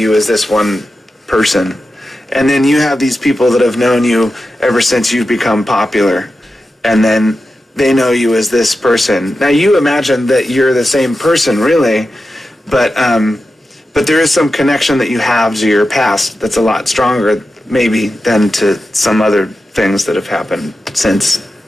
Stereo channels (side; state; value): both; normal; correlation 0.91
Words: as this one person. And then you have these people that have known you ever since you've become popular, and then they know you as this person. Now, you imagine that you're the same person, really, but there is some connection that you have to your past that's a lot stronger, maybe, than to some other things that have happened since